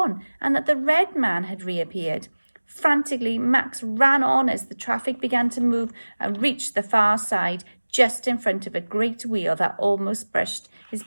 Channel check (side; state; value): both; inverted; correlation -1.00